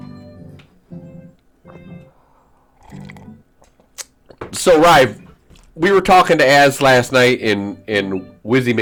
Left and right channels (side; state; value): both; identical; correlation 1.00